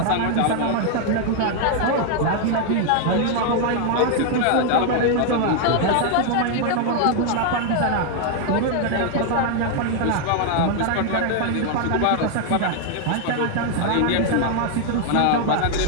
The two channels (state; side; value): different; both; correlation 0.00